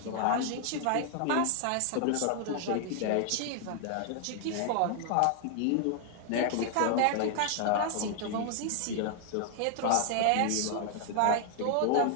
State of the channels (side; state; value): both; different; correlation 0.00